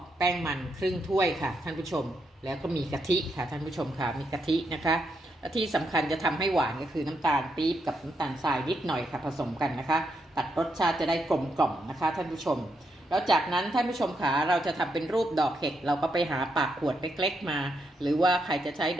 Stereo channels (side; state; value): both; normal; correlation 0.80